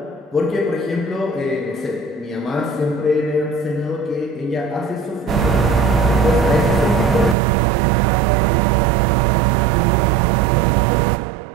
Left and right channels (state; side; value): drops out; left; at 7.4 s